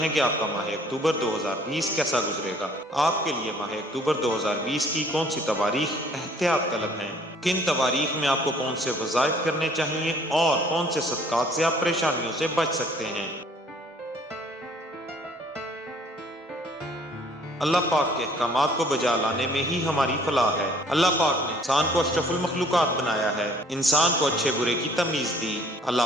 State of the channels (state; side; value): normal; both; correlation 0.57